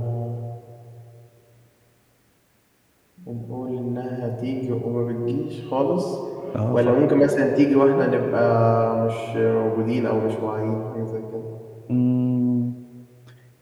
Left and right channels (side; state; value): both; identical; correlation 1.00